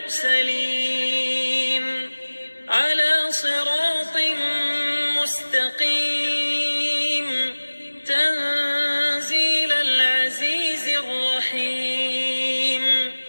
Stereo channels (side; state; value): both; inverted; correlation -1.00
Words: على صراط مستقيم تنزيل العزيز الرحيم